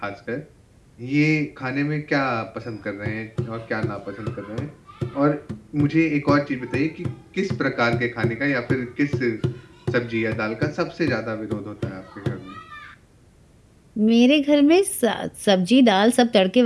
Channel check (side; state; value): both; identical; correlation 1.00